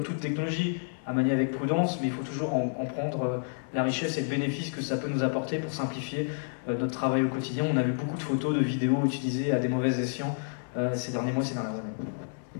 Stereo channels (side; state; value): right; silent; 58 dB below the other